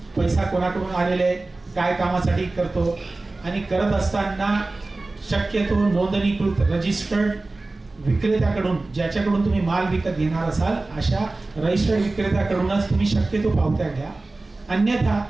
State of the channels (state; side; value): quieter; left; 3.2 dB